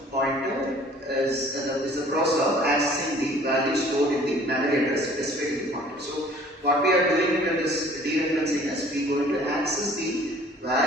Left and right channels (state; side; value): normal; both; correlation 0.53